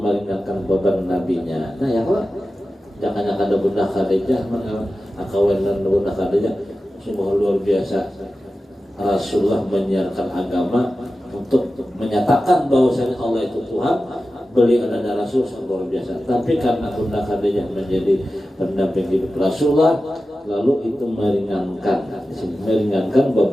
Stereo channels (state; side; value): normal; both; correlation 0.94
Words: beban nabinya. Nah ya Allah, jangan ada Bunda Khadijah, akawenan Bunda Khadijah sungguh luar biasa. Rasulullah menyiarkan agama untuk menyatakan bahwasanya Allah itu Tuhan, beliau adalah Rasul luar biasa. Tapi karena Bunda Khadijah menjadi pendamping hidup Rasulullah, lalu itu meringankan